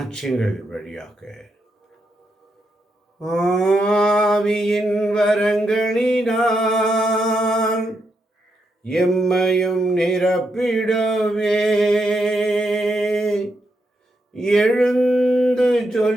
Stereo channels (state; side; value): normal; both; correlation 0.81